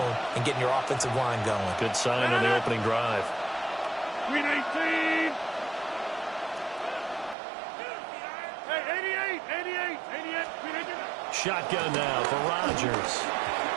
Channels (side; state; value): left; drops out; at 7.4 s